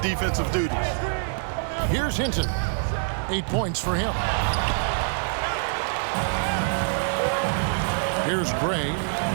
duties. Here's Hinton. 8 points for him. Here's Gray.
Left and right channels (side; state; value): left; silent; digital silence